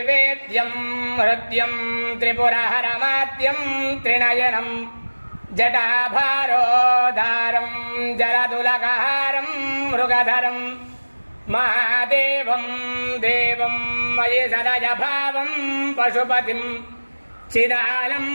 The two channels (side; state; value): both; inverted; correlation -1.00